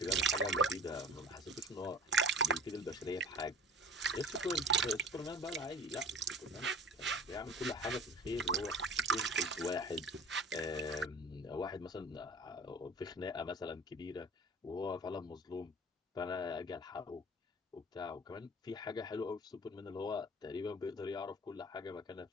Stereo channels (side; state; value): both; normal; correlation 0.43